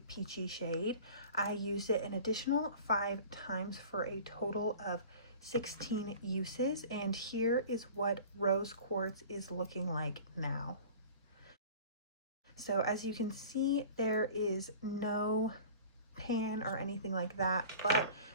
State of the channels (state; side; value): inverted; both; correlation -0.41